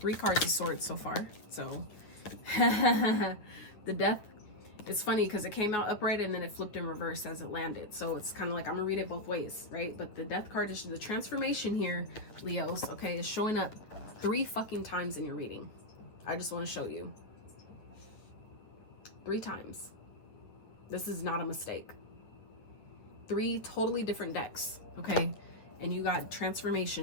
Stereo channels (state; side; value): late; right; 9.3 ms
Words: cards of Swords so far. So the Death. It's funny because it came out upright and then it flipped in reverse as it landed. So it's kind of like, I'm gonna read it both ways, right? But the Death card is the transformation here, Leos, okay, is showing up 3 fucking times in your reading. I just want to show you. 3 times. This is not a mistake. 3 totally different decks, okay? And you got